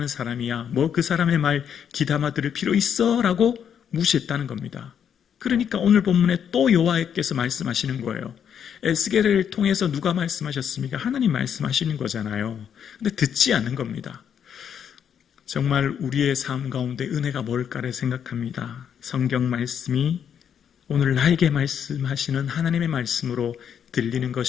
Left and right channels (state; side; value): quieter; right; 8.3 dB